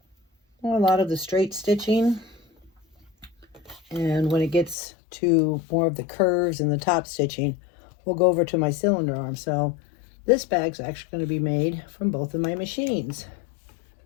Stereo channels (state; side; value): drops out; right; at 4.8 s